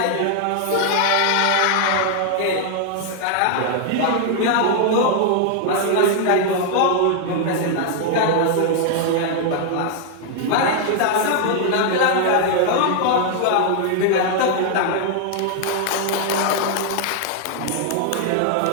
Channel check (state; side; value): different; both; correlation 0.00